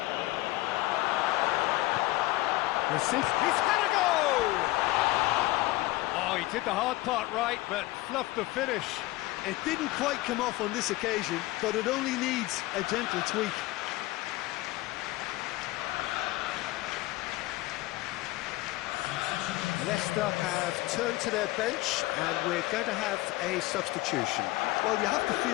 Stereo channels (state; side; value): quieter; right; 19.3 dB